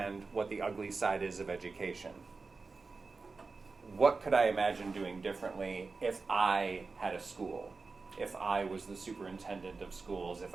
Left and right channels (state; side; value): quieter; left; 4.2 dB